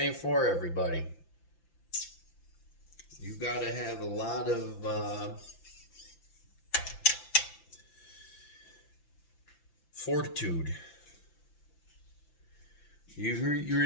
for everybody. You gotta have a lot of fortitude. You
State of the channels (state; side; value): late; right; 5.9 ms